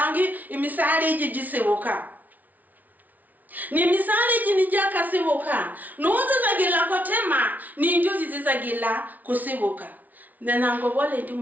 imisari jigisebuka ni misali jinijaka sibuka nuze zagila kotema ni njuzi zizagila kusibuka nanango bole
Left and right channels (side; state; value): left; late; 0.077 ms